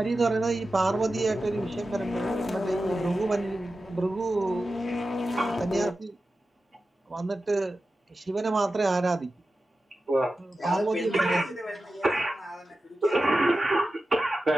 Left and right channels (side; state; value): both; normal; correlation 0.93